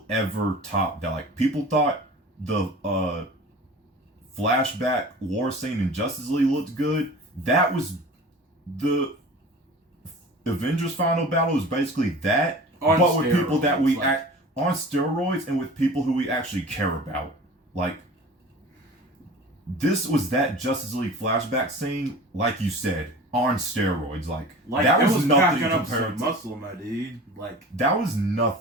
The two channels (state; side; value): normal; both; correlation 0.39